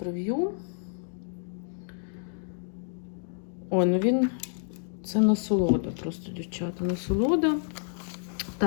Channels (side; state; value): right; silent; digital silence